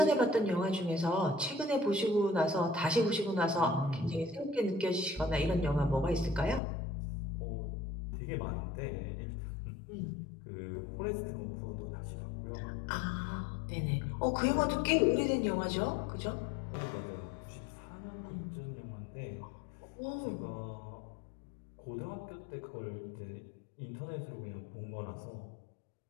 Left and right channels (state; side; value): drops out; right; at 6.6 s